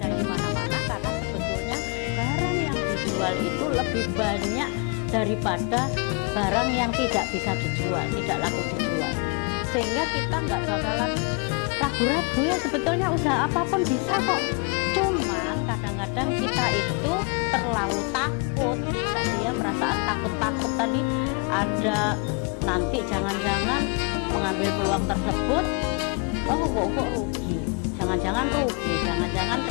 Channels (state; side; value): quieter; right; 35.6 dB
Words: di mana-mana, karena sebetulnya barang yang dijual itu lebih banyak daripada barang yang tidak bisa dijual, tidak laku dijual. Sehingga kita nggak bakalan ragu-ragu ya, sebetulnya usaha apapun bisa kok. Cuman kadang-kadang kita itu terlalu takut tadi ya, perasaan takut-takut tadi ada, nanti jangan-jangan mengambil peluang tersebut, oh kok rugi, jangan-jangan rugi, jangan-jangan